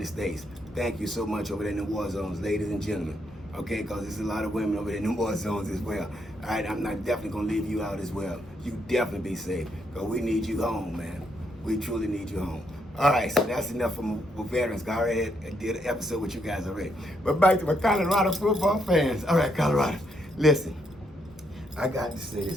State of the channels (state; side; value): normal; both; correlation 0.76